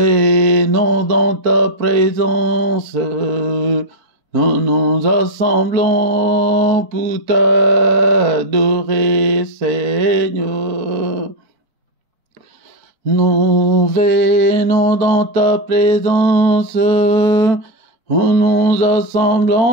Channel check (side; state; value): left; late; 4.4 ms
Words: dans ta présence. Nous nous assemblons pour t'adorer, Seigneur. Nous venons dans ta présence. Nous nous